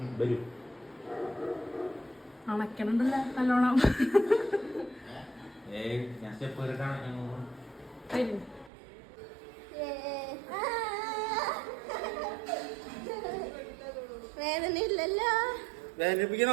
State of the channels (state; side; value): drops out; left; at 8.7 s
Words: വരൂ. അണക്കണുണ്ടല്ലോ നല്ലോണം. ഞാൻ സ്റ്റെപ്പ് കയറിട്ടാണ്. വേദന ഇല്ലല്ലോ.